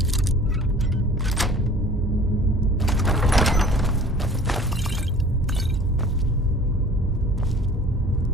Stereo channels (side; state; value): both; normal; correlation 0.47